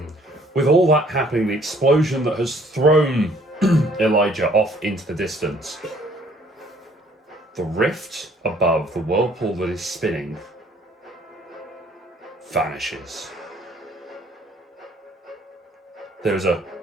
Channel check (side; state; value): both; normal; correlation 0.60